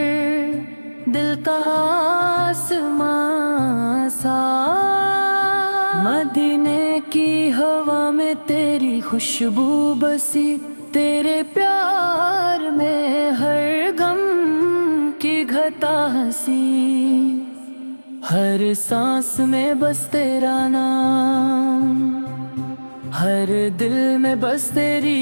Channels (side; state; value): both; inverted; correlation -1.00